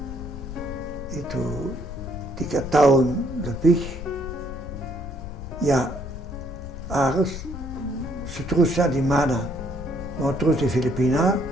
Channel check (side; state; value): left; noise; rumble, 9 dB below the sound